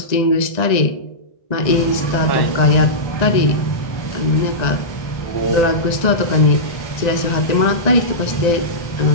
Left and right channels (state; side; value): late; right; 1.9 ms